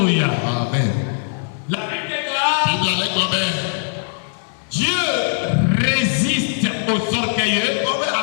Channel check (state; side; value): silent; right; digital silence